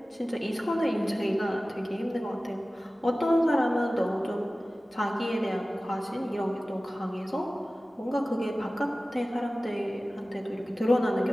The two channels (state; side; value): normal; both; correlation 0.97